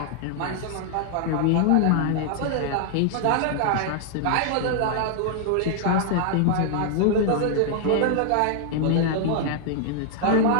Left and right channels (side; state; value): both; different; correlation -0.01